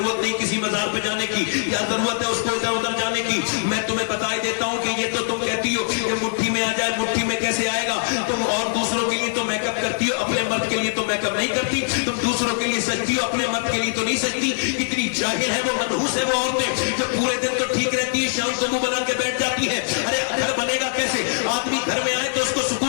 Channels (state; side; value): silent; right; digital silence